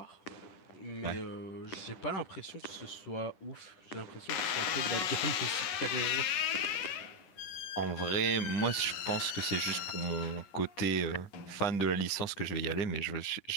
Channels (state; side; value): late; right; 11 ms